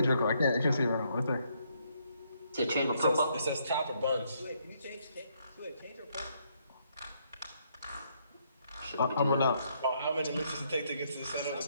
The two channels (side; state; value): both; inverted; correlation -0.73